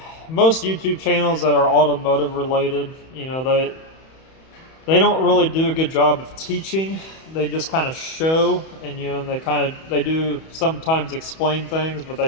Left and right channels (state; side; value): late; right; 31 ms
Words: YouTube channels that are automotive related, they don't really do a good job of teaching. They just kind of show, and they do sometimes explain things, but